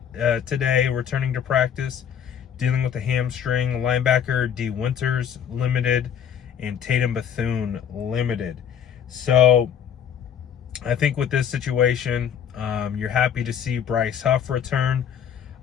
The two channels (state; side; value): quieter; right; 8.4 dB